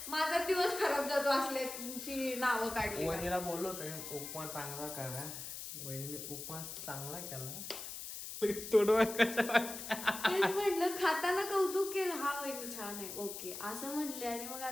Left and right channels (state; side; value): noise; left; hiss, 8 dB below the sound